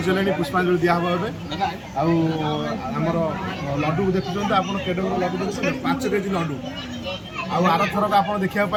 ପୁଷ୍ପାଞ୍ଜଳି ଦିଆହେବ ଏବେ। ଆଉ ଆମର ଲଡ଼ୁକୁ ଦେଖୁଛନ୍ତି ଆପଣ, କେଡ଼େ ବଡ଼ ଲଡ଼ୁ ଦେଖୁଛନ୍ତି, 5 କେଜି ଲଡ଼ୁ। ଆଉ ଆରଥରକ ଆପଣ ଦେଖିବାକୁ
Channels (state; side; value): identical; both; correlation 1.00